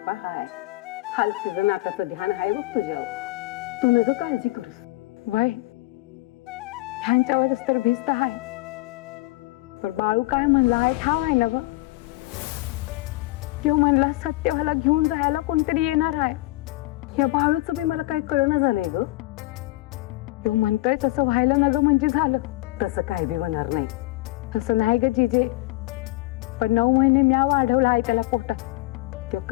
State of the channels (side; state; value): right; quieter; 19.9 dB